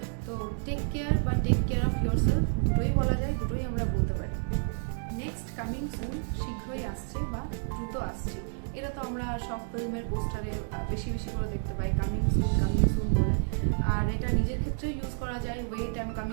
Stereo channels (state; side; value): silent; left; 58 dB below the other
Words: তো টেক কেয়ার বা টেক কেয়ার অফ ইয়োরসেলফ দুটোই বলা যায়, দুটোই আমরা বলতে পারি। নেক্সট, কামিং সুন, শীঘ্রই আসছে বা দ্রুত আসছে। এটা তো আমরা সব ফিল্মের পোস্টারে বেশি বেশি করে দেখতে পাই, কামিং সুন বলে। আর এটা নিজের ক্ষেত্রে ইউজ করা যায়, wait, I am